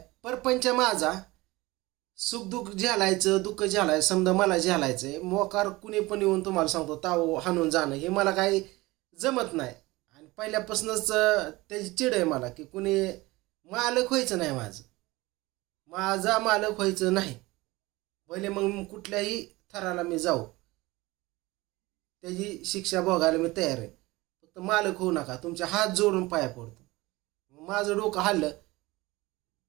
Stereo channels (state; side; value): quieter; left; 20.8 dB